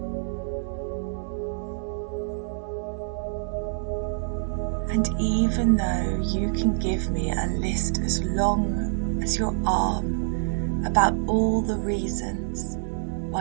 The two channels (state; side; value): silent; left; 55 dB below the other